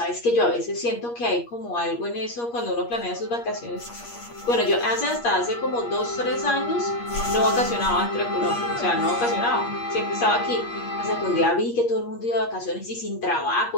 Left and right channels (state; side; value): late; right; 8.5 ms